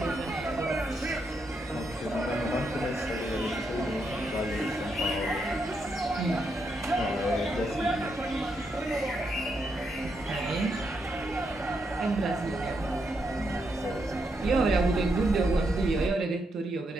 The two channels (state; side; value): normal; both; correlation 0.80